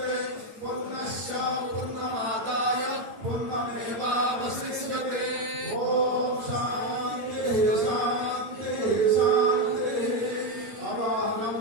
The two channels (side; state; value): left; late; 8.8 ms